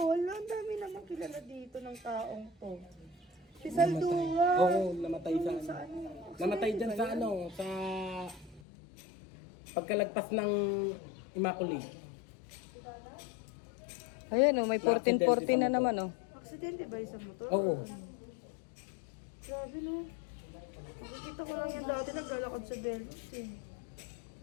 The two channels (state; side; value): drops out; right; at 8.6 s